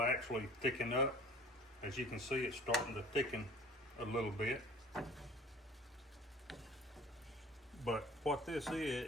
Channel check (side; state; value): both; normal; correlation 0.46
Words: actually thicken up. As you can see, it's starting to thicken a little bit. But what this